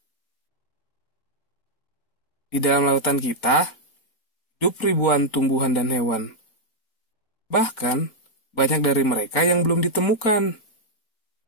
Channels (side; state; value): right; late; 4.4 ms